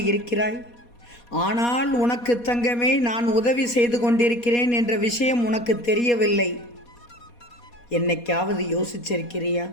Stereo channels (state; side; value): late; right; 4.2 ms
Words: இருக்கிறாய். ஆனால் உனக்கு தங்கமே, நான் உதவி செய்து கொண்டிருக்கிறேன் என்ற விஷயம் உனக்கு தெரியவில்லை. என்னைக்காவது யோசிச்சிருக்கிறியா?